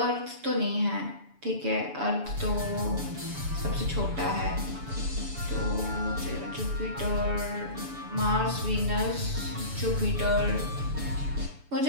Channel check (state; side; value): late; left; 7.0 ms